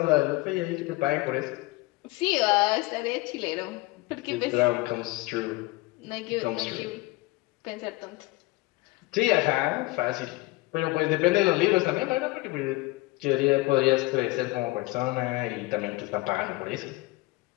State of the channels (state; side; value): quieter; right; 21.4 dB